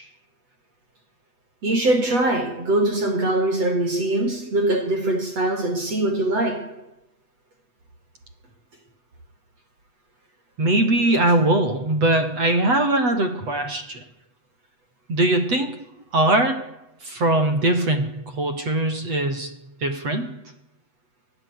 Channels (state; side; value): late; left; 8.1 ms